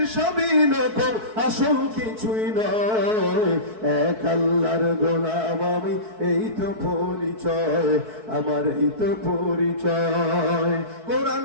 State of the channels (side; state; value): left; late; 4.6 ms